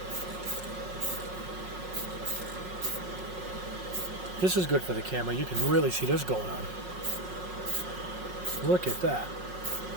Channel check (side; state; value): left; late; 5.5 ms